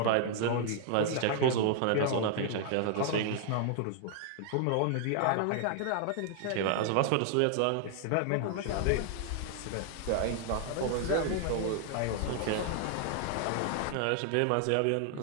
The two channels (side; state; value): both; different; correlation 0.00